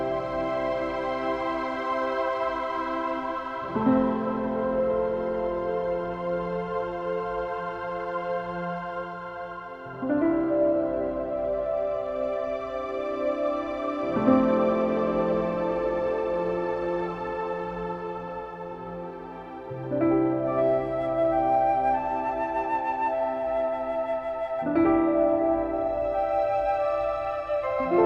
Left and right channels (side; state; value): both; identical; correlation 1.00